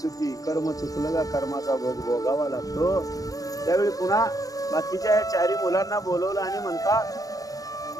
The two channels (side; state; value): right; late; 0.17 ms